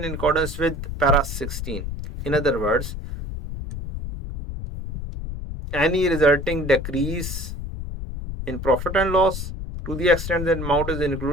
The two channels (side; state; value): left; noise; rumble, 7 dB below the sound